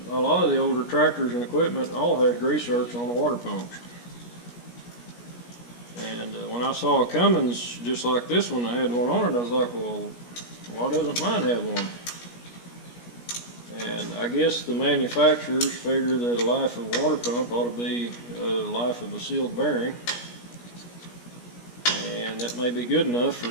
a lot of the older tractors and equipment all had grease zerks on the water pumps. And when I saw a Cummins just like this one, I had one on it, I was like, well, why doesn't mine have one? And I guess the manufacturers figure that a life of a water pump ought to be a life of a sealed bearing. And that may be good enough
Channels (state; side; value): late; right; 17 ms